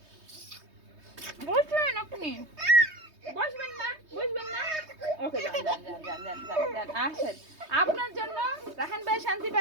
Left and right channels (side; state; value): left; late; 3.2 ms